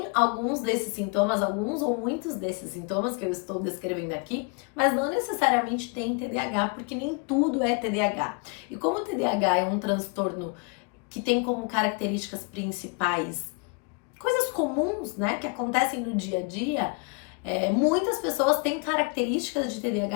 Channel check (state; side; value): quieter; right; 34.0 dB